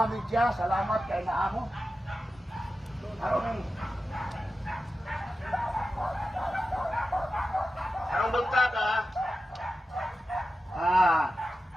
media, salamat kay naamo. Arong bugta ka?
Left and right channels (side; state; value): both; normal; correlation 0.92